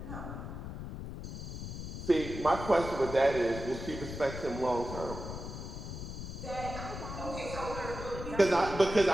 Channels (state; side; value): noise; left; rumble, 8 dB below the sound